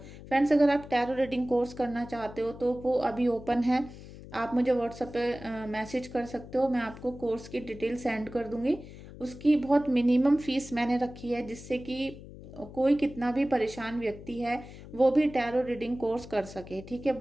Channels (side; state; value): left; noise; hum, 15 dB below the sound